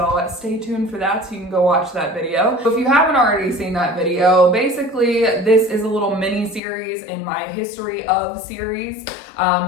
stay tuned for that so you can go watch that video. If you haven't already seen that video, basically this is a little mini series in my history of series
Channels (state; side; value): drops out; right; at 6.6 s